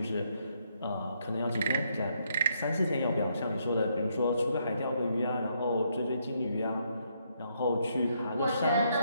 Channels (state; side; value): inverted; both; correlation -0.74